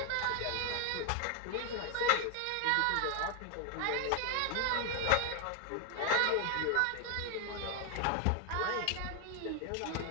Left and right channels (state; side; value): different; both; correlation 0.01